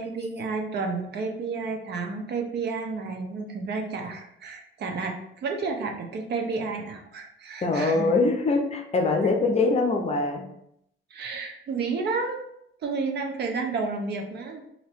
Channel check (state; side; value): normal; both; correlation 0.40